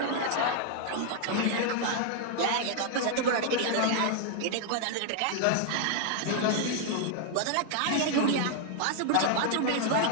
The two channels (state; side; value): different; both; correlation 0.00